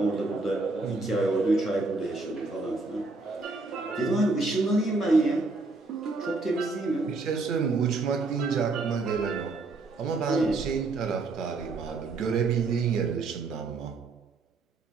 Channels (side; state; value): left; quieter; 3.6 dB